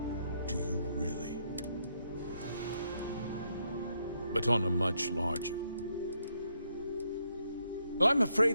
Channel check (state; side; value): inverted; both; correlation -0.76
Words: do you really? But on a much larger. Well, I'm